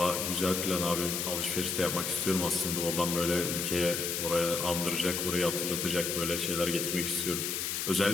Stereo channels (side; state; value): left; noise; hiss, 1 dB below the sound